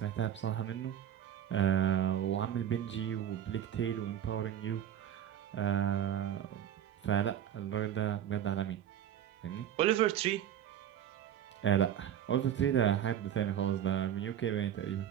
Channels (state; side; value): quieter; left; 10.1 dB